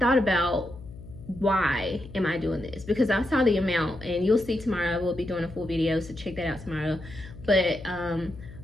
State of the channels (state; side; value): noise; left; hum, 16 dB below the sound